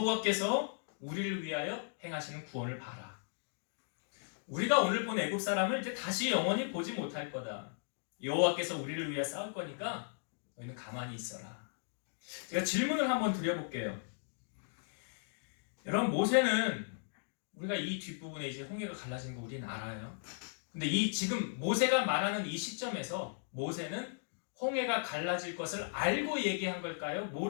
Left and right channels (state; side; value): silent; right; digital silence